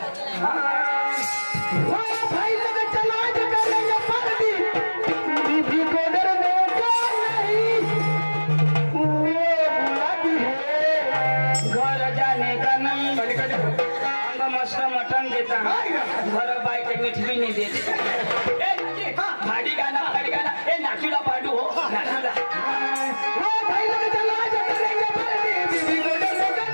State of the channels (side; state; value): both; inverted; correlation -1.00